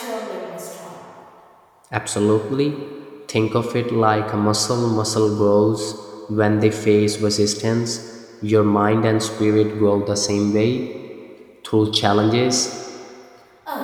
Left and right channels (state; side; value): identical; both; correlation 1.00